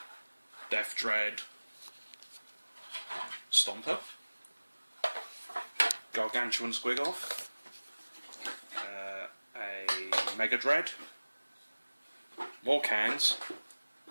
Death Dread, Stomper, Gargantuan Squigoth, a Mega Dread, more cans,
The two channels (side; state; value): both; inverted; correlation -1.00